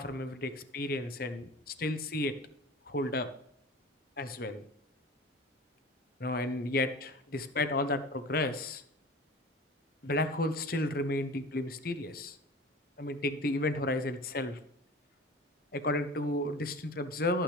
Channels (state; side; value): normal; both; correlation 0.38